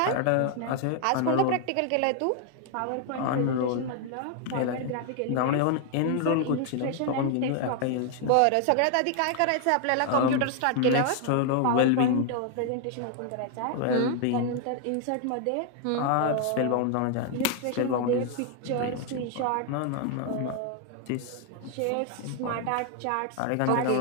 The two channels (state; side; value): different; both; correlation 0.00